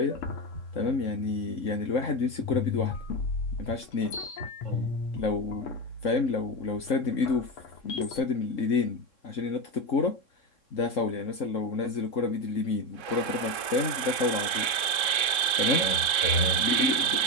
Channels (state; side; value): late; right; 3.7 ms